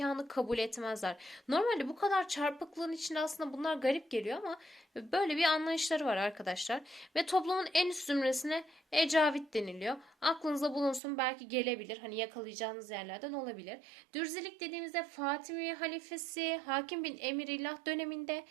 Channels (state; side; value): drops out; left; at 11.0 s